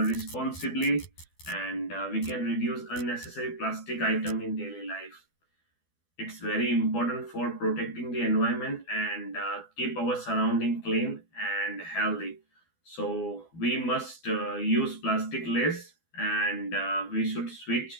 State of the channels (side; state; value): right; late; 12 ms